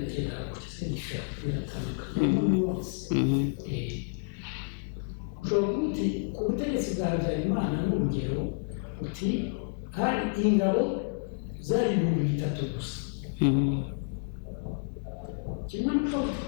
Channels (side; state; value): right; quieter; 37.3 dB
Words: gutya c'est différent biratandukanye harimo nuance ushobora kuvuga uti ku butegetsi bwa Habyarimana n'urugero uti hari ingabo zari 3,000 gusa kimwe n'ushobora uti